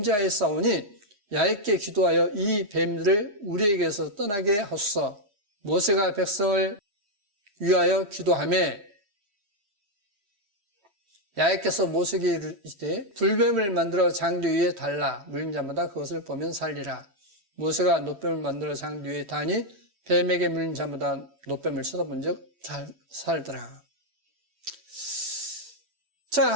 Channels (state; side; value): late; left; 3.1 ms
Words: 싸우니 야훼께 기도하여 이 뱀들을 우리에게서 떠나게 하소서. 모세가 백성을 위하여 기도하매 야훼께서 모세에게 이르시되 불뱀을 만들어 장대 위에 달라 물린 자마다 그것을 보면 살리라. 모세가 놋뱀을 만들어 장대 위에 다니 뱀에게 물린 자마다 놋뱀을 쳐다본 적 살더라. 자,